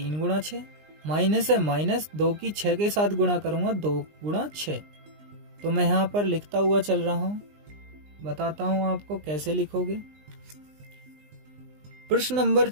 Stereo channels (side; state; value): left; late; 20 ms